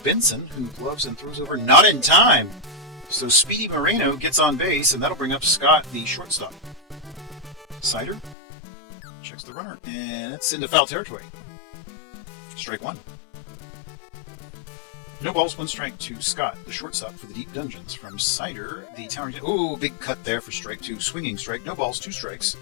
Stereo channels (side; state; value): right; drops out; at 8.3 s